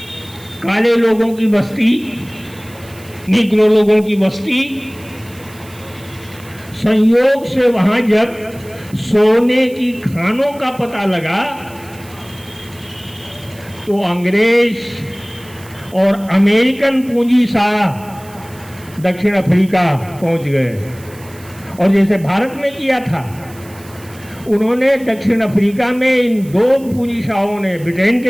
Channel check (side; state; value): right; noise; hiss, 22 dB below the sound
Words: काले लोगों की बस्ती, निग्रो लोगों की बस्ती। संयोग से वहां जब सोने की खानों का पता लगा, तो अंग्रेज और अमेरिकन पूंजी शाह दक्षिण अफ्रीका पहुंच गए। और जैसे भारत में किया था, उन्होंने दक्षिण अफ्रीका में इन दो पूंजीशाहों ने, ब्रिटेन